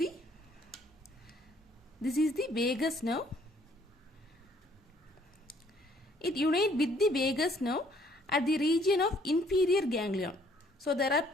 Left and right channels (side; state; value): both; normal; correlation 0.63